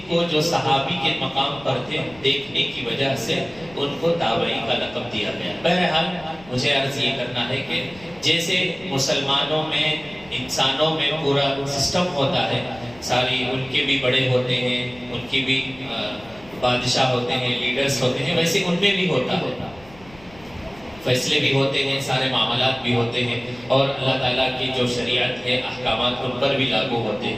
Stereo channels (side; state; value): left; noise; rumble, 23 dB below the sound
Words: کو جو صحابی کے مقام پر تھے دیکھنے کی وجہ سے ان کو تابعی کا لقب دیا گیا۔ بہرحال مجھے عرض یہ کرنا ہے کہ جیسے مسلمانوں میں انسانوں میں پورا سسٹم ہوتا ہے، ساری ان کے بھی بڑے ہوتے ہیں، ان کی بھی بادشاہ ہوتے ہیں، لیڈرز ہوتے ہیں، ویسے ان میں بھی ہوتا ہے، فیصلے بھی ہوتے ہیں، سارے معاملات بھی ہوتے ہیں، اور اللہ تعالیٰ کی جو شریعت ہے احکامات ان پر بھی لاگو ہوتے